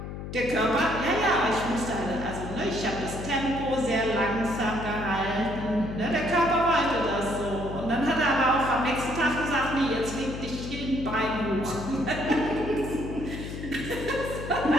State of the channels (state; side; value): noise; left; hum, 8 dB below the sound